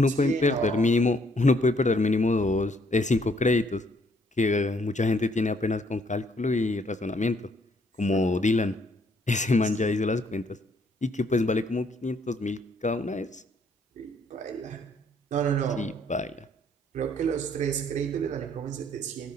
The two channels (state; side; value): normal; both; correlation 0.67